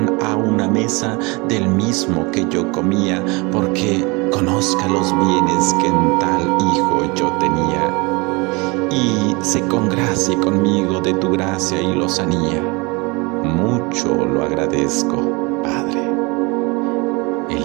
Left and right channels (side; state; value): left; quieter; 26.9 dB